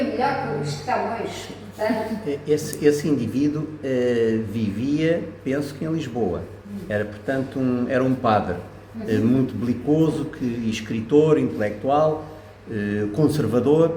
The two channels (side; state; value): both; identical; correlation 1.00